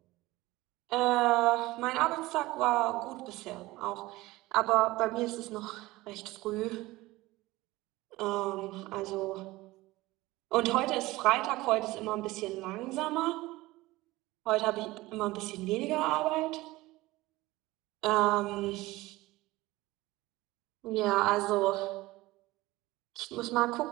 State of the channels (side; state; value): left; quieter; 19.2 dB